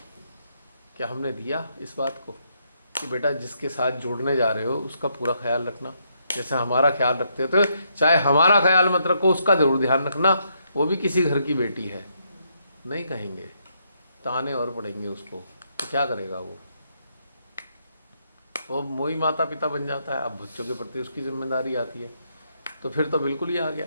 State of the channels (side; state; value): both; inverted; correlation -0.76